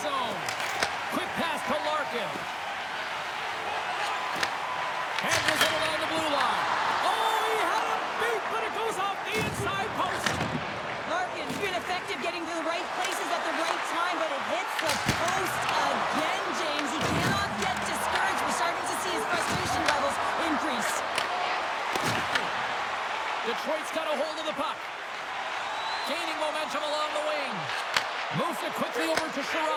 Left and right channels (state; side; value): identical; both; correlation 1.00